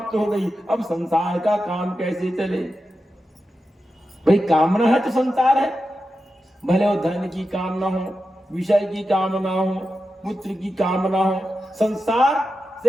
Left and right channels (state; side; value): normal; both; correlation 0.90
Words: हो गई। अब संसार का काम कैसे चले? भाई कामना है तो संसार है, भले वो धन की कामना हो, विषय की कामना हो, पुत्र की कामना हो, संसार